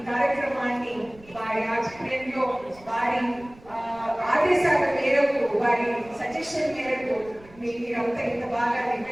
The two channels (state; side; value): noise; right; rumble, 23 dB below the sound